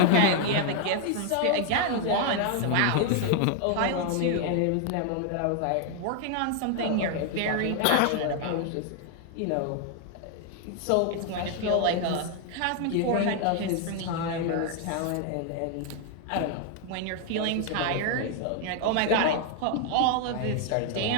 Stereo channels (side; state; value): both; different; correlation 0.00